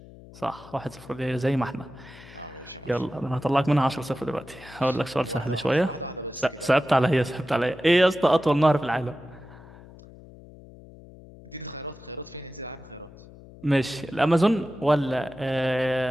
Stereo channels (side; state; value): left; noise; hum, 20 dB below the sound